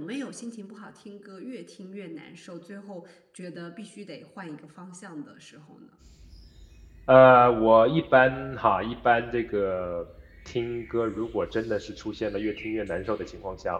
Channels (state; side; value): identical; both; correlation 1.00